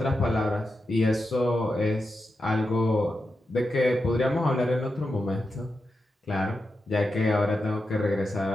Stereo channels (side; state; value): both; normal; correlation 0.89